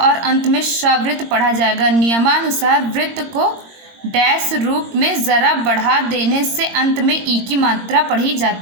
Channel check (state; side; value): late; left; 22 ms